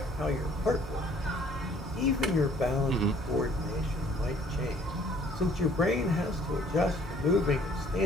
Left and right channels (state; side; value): normal; both; correlation 0.58